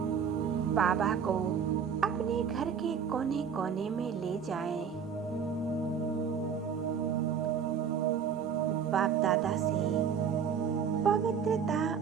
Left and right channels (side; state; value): left; quieter; 7.1 dB